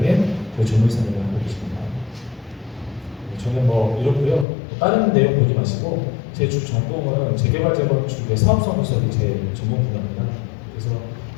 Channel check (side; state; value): right; drops out; at 4.5 s